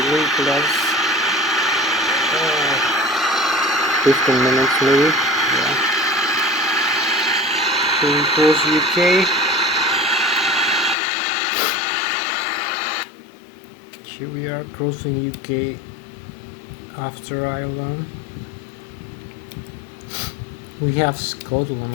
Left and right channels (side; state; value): right; drops out; at 11.0 s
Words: plus 15 minutes maybe. Yeah. Here we cross UK. Here we are crossing UK after Ireland. We have Scotland